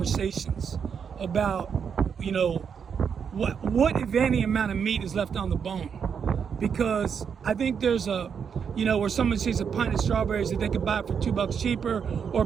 about what if any amount of meat is left on the bone, because I think there's where someone sees a pint of strawberries that they can buy for $2 cheaper, or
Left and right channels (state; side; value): quieter; left; 7.0 dB